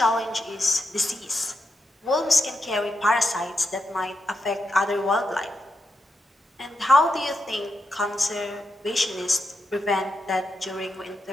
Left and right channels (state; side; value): normal; both; correlation 0.85